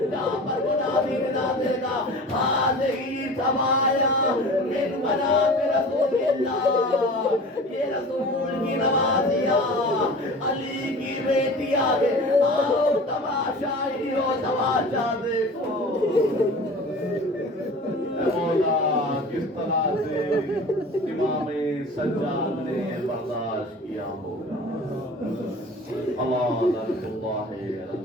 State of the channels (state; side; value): normal; both; correlation 0.39